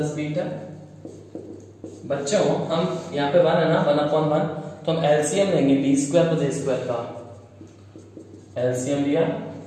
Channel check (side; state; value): both; identical; correlation 1.00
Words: beta, बच्चों हम यहाँ पे 1 है ना, 1/1, तो हम एलसीएम लेंगे बी स्क्वायर प्लस ए स्क्वायर का, एलसीएम लिया,